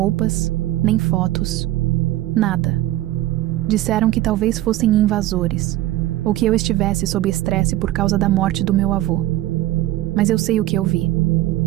nem fotos, nada. Disseram que talvez fossem invasores, ou que eu estivesse sob estresse por causa da morte do meu avô. Mas eu sei o que eu vi.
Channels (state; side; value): quieter; left; 15.5 dB